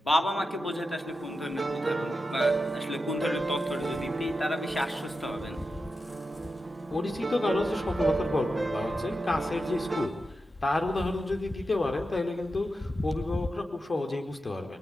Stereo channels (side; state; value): both; normal; correlation 0.90